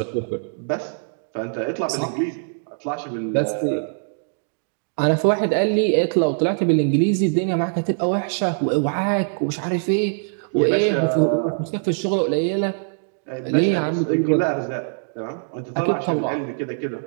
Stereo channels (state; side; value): silent; left; digital silence